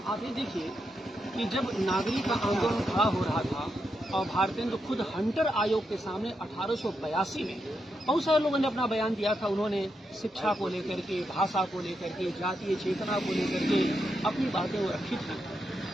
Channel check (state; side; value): normal; both; correlation 0.84